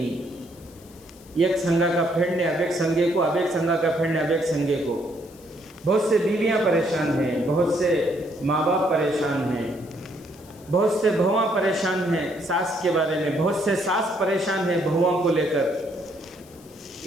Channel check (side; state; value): left; noise; hiss, 25 dB below the sound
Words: ایک سنگا کا پھیڑنے اب ایک سنگے کو، اب ایک سنگا کا پھیڑنے اب ایک سنگے کو۔ بہت سے بیویاں پریشان ہیں، بہت سے ماں باپ پریشان ہیں، بہت سے بہواں پریشان ہیں ساس کے بارے میں، بہت سے ساس پریشان ہیں بہواں کو لے کر،